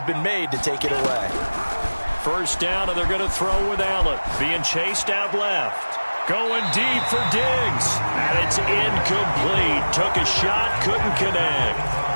been made to take it away. First down, and they're going to throw with Allen. Being chased out left. Going deep for Diggs. And it's incomplete. Took a shot, couldn't connect.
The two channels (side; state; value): both; inverted; correlation -1.00